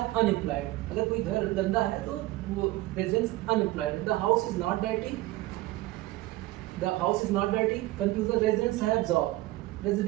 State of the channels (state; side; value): quieter; left; 18.1 dB